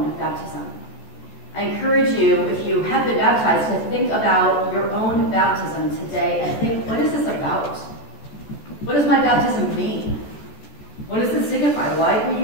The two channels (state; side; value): late; right; 14 ms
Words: baptism. I encourage you, if you have been baptized, to think about your own baptism today and think, what is this about? What does my baptism mean? What does it signify? Why did we